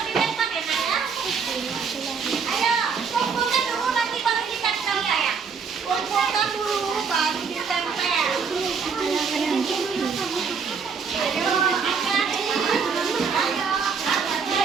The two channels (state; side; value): quieter; left; 5.8 dB